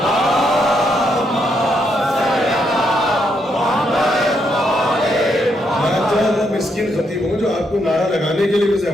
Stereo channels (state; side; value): normal; both; correlation 0.77